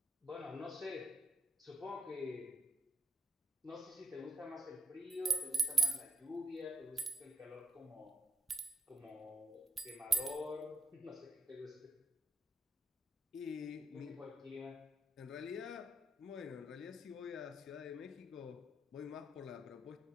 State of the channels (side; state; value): both; normal; correlation 0.79